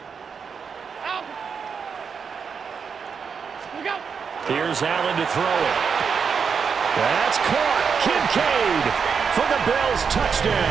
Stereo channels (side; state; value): left; quieter; 6.1 dB